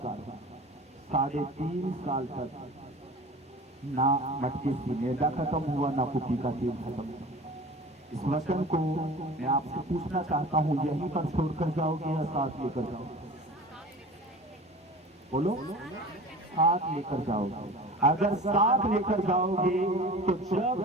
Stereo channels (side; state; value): both; normal; correlation 0.39